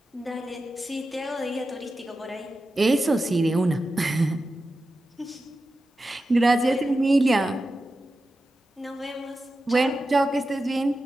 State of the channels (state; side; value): normal; both; correlation 0.92